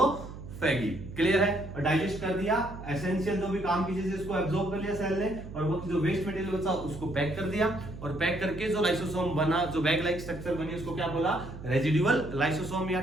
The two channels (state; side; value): noise; right; hum, 12 dB below the sound